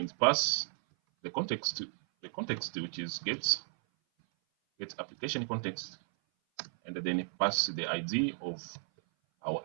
pass the context which is get application context, and then pass the ID of our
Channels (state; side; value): silent; left; 55 dB below the other